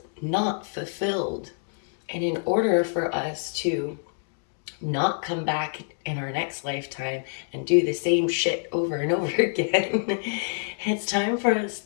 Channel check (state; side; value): silent; right; digital silence